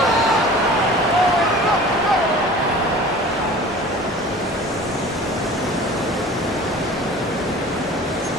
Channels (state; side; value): normal; both; correlation 0.42